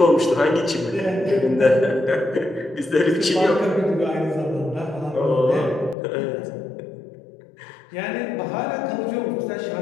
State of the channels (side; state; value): right; drops out; at 6.0 s